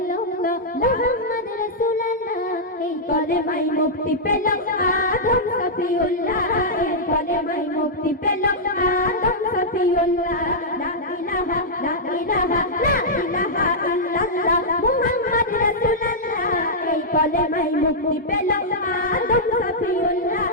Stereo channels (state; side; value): normal; both; correlation -0.09